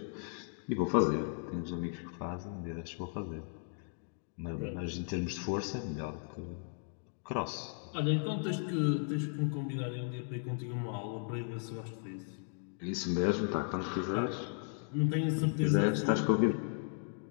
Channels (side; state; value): right; silent; 54 dB below the other